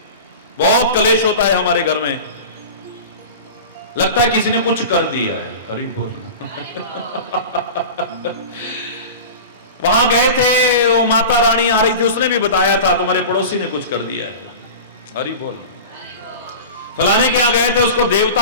बहुत कलेश होता है हमारे घर में। लगता है किसी ने कुछ कर दिया है। हरि बोल। वहां गए थे, वो माता रानी आ रही थी, उसने भी बताया था तुम्हारे पड़ोसी ने कुछ कर दिया है। हरि बोल। फलाने के यहां गए थे, उसको देवता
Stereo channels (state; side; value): inverted; both; correlation -0.32